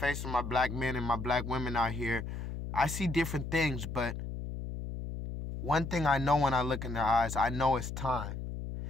of my black men and my black women out here, I see different things, but one thing I know when I look in their eyes, I know it's time.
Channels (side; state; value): left; noise; hum, 6 dB below the sound